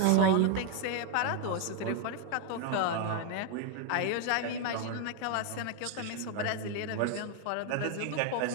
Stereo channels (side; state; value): both; different; correlation 0.01